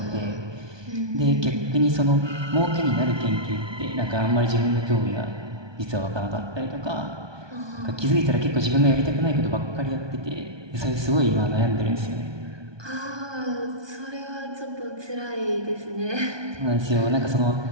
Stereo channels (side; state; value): left; late; 1.2 ms